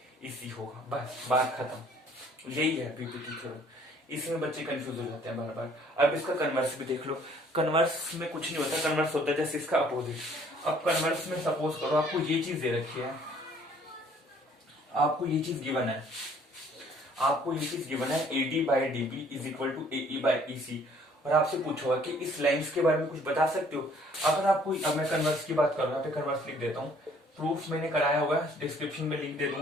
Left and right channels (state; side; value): normal; both; correlation 0.59